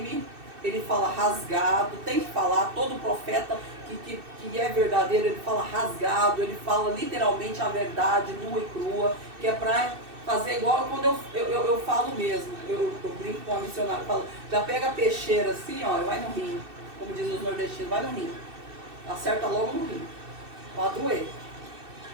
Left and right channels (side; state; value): left; late; 2.6 ms